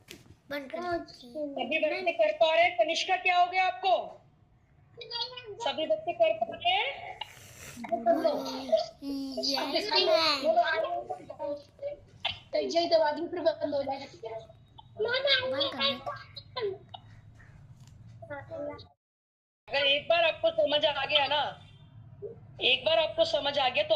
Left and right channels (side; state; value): both; identical; correlation 1.00